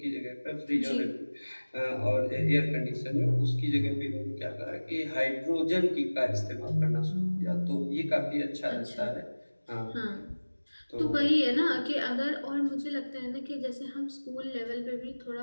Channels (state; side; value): inverted; both; correlation -1.00